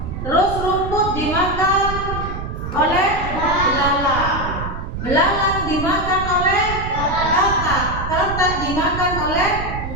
Terus rumput dimakan oleh belalang. Belalang dimakan oleh katak. Katak dimakan oleh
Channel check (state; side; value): noise; right; rumble, 6 dB below the sound